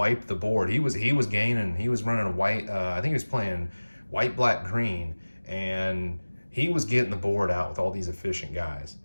the board. He was gaining. He was running a white. I think he was playing white, black, green, and he was getting the board out with all these efficient guys.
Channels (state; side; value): inverted; both; correlation -1.00